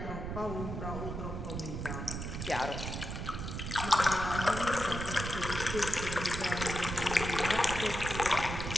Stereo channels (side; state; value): right; noise; rumble, 5 dB below the sound